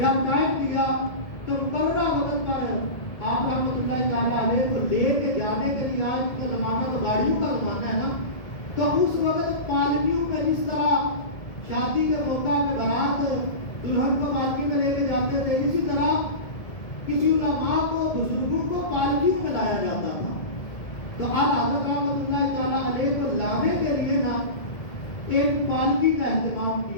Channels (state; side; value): late; right; 1.7 ms